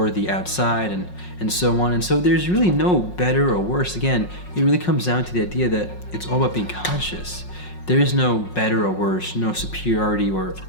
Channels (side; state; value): right; late; 5.5 ms